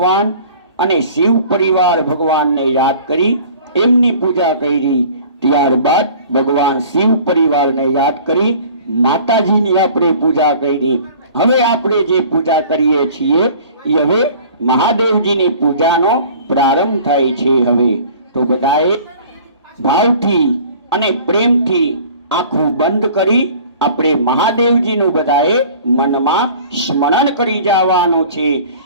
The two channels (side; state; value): both; inverted; correlation -0.47